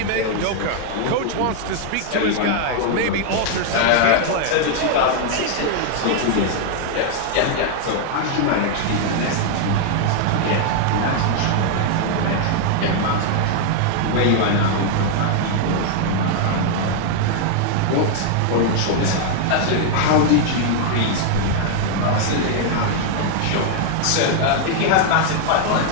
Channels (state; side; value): different; both; correlation 0.00